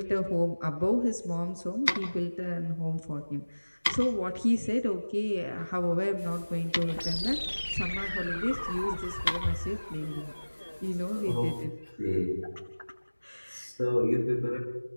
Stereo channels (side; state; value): both; inverted; correlation -1.00